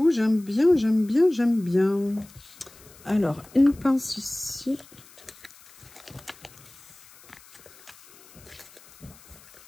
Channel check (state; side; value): noise; left; hiss, 24 dB below the sound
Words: j'aime bien. Alors, une pince ici.